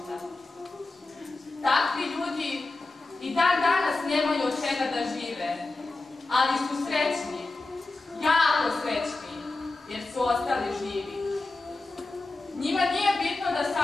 Takvi ljudi i dan danas nemaju od čega da žive, ali su srećni, jako srećni, jer su ostali živi. Njima nije bitno da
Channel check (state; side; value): quieter; right; 3.2 dB